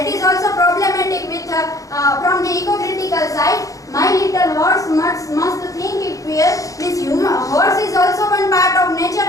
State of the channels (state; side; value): late; right; 0.16 ms